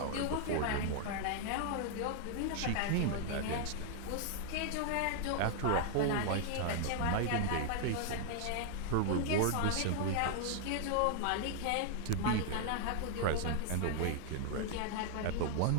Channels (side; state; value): both; different; correlation 0.00